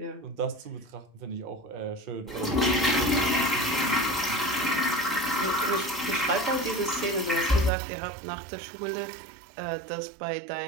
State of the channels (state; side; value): drops out; left; at 7.7 s